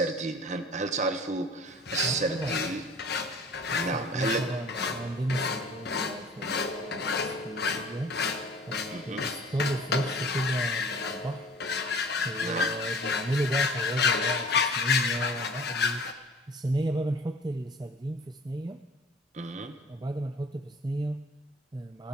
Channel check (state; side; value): normal; both; correlation 0.46